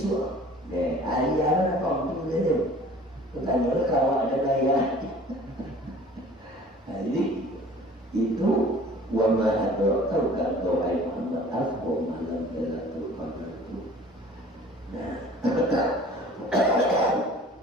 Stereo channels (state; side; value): normal; both; correlation 0.48